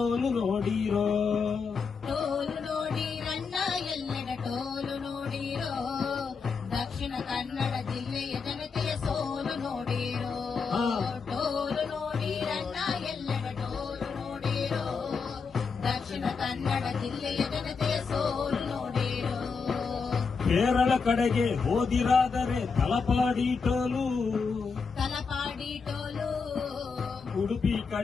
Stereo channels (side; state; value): right; quieter; 5.2 dB